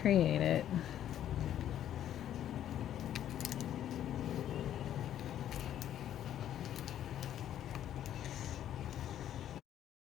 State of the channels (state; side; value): quieter; right; 11.0 dB